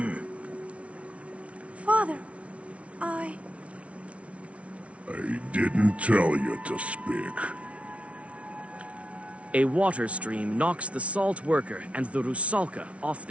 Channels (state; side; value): late; left; 0.063 ms